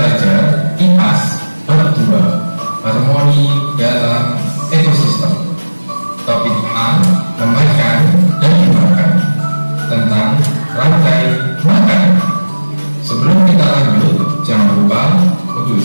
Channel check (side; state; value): both; inverted; correlation -1.00